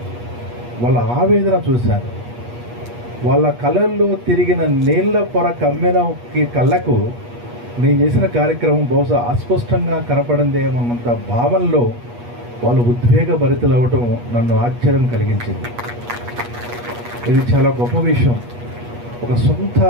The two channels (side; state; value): left; late; 8.3 ms